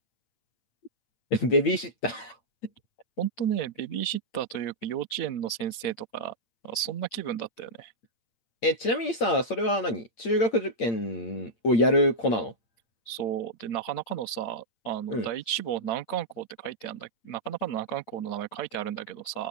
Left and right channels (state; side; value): late; right; 8.7 ms